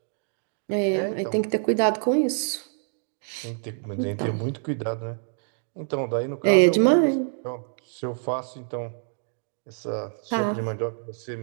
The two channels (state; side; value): silent; left; digital silence